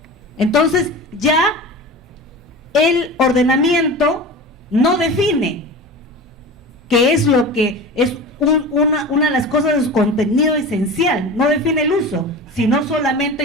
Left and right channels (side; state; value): both; normal; correlation 0.32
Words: Entonces ya el ordenamiento no define qué es lo que es una de las cosas de su contenido esencial, no define el uso, sino